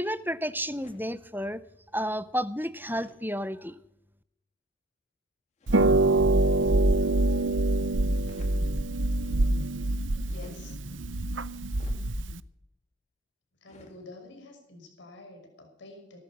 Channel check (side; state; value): both; normal; correlation 0.53